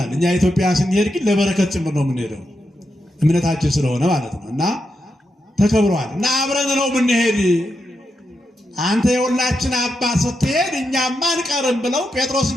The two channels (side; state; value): both; normal; correlation 0.85